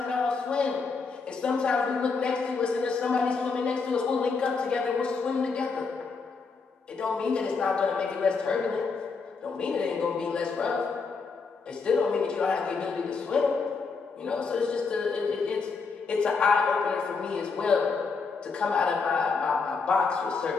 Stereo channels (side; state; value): right; quieter; 4.8 dB